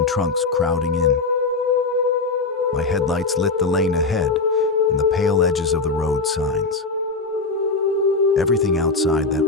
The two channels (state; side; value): quieter; right; 3.9 dB